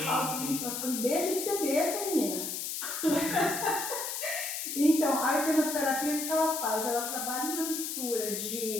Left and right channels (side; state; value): left; noise; hiss, 4 dB below the sound